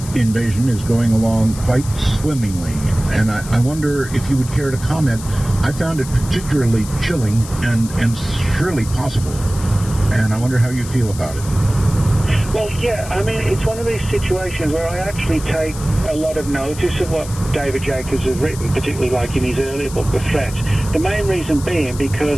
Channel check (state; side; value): noise; left; hiss, 14 dB below the sound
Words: invasion is going along quite swimmingly. And I wonder if you would care to comment. I found it particularly chilling and surely possible, and I wonder how you feel about it. Well, yeah, I mean, it's one of these situations where I actually take a lot of notice of what David Jacobs has written, particularly like in his earlier book, The Threat. The main reason being